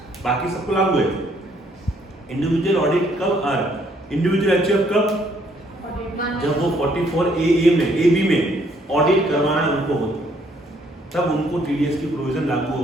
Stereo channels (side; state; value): both; normal; correlation 0.67